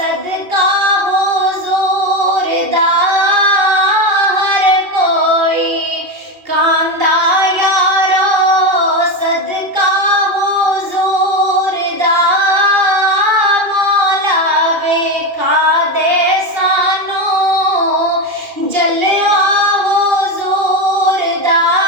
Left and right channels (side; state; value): left; late; 2.4 ms